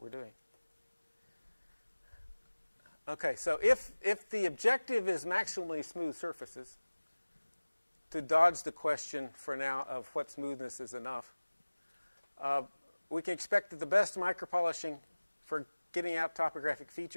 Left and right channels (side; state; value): both; inverted; correlation -1.00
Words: we're doing. Okay, so if the objective is maximally smooth surfaces, to dodge the question for now of what smoothness is enough, we can expect that the best micropolishing for getting out topographic